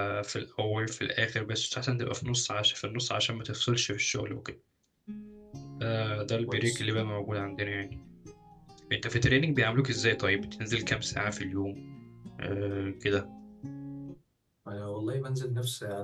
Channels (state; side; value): identical; both; correlation 1.00